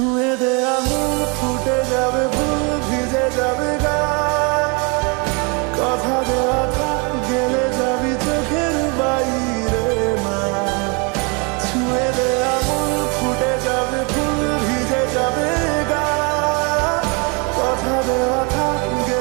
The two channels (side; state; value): left; quieter; 32.0 dB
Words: দে আঙুল ফুটে যাবে ফুল ভিজে যাবে গা কথা দেওয়া থাক গেলে যাবি চোখের বাইরে মা ছুঁয়ে দে আঙুল ফুটে যাবে ফুল ভিজে যাবে গা কথা দেওয়া থাক